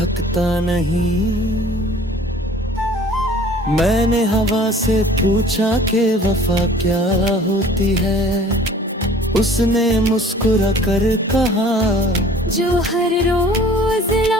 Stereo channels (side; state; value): both; normal; correlation 0.50